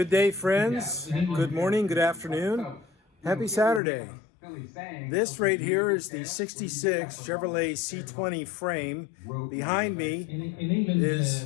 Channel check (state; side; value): drops out; right; at 3.8 s